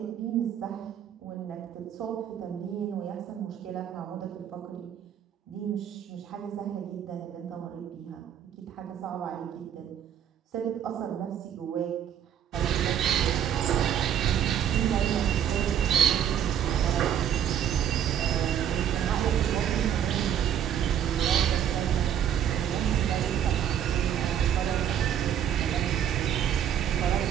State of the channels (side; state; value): left; quieter; 9.5 dB